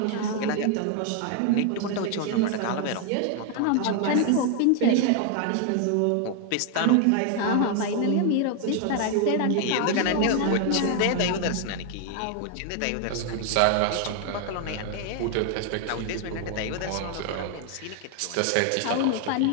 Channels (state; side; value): different; both; correlation 0.00